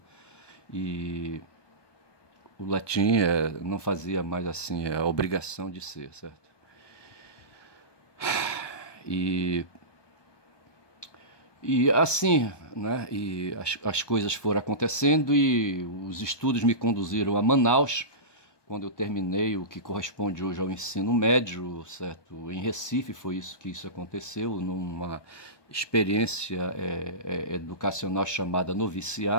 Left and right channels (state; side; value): late; right; 1.2 ms